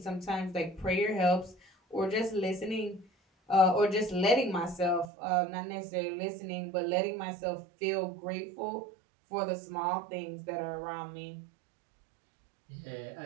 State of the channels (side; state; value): left; drops out; at 5.1 s